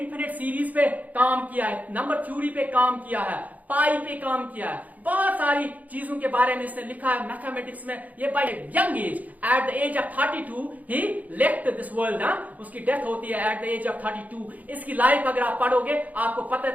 सीरीज पे काम किया है, नंबर थ्योरी पे काम किया है, पाई पे काम किया है, बहुत सारी चीजों के बारे में इसने लिखा है मैथमेटिक्स में. ये by young age, at the age of 32 ही लेफ्ट दिस वर्ल्ड. उसकी डेथ होती है एट द एज ऑफ 32. इसकी लाइफ अगर आप पढ़ोगे आपको पता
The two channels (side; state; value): left; late; 0.077 ms